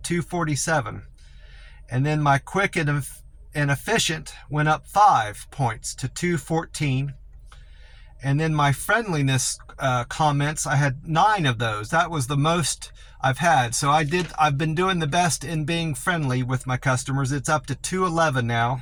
247. And then my quick and efficient went up 5 points to 214. And then my friendliness comments, I had 9 of those. That was the most I've had. So I've been doing the best in being friendly with my customers. It's up to 211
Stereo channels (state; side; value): identical; both; correlation 1.00